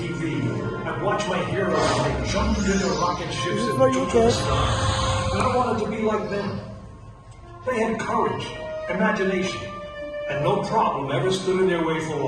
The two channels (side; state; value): both; identical; correlation 1.00